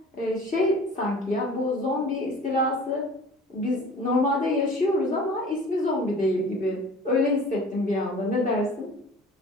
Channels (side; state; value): both; normal; correlation 0.44